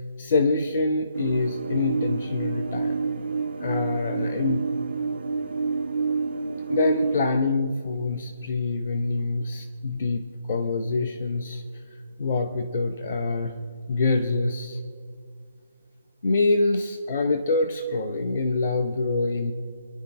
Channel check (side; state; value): both; inverted; correlation -0.74